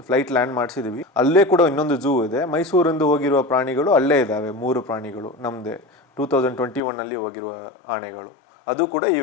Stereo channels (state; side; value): drops out; right; at 6.8 s